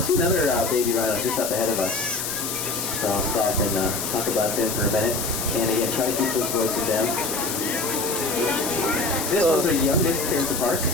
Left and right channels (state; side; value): noise; left; hiss, 3 dB below the sound